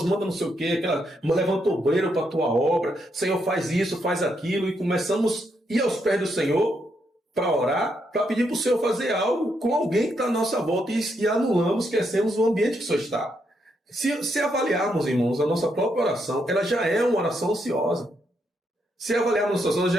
manda não sei o quê, levanta obreiro para a tua obra, Senhor, faz isso, faz aquilo, e começamos a ir aos pés do Senhor para orar, para pedir para o Senhor fazer algo com alguém que está à nossa volta e anulamos, esquecemos o ambiente que o Senhor está. Se avaliarmos, irmãos, a nossa própria oração, ela já é uma oração ansiosa. Se avaliarmos a nossa oração,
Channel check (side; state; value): both; normal; correlation 0.78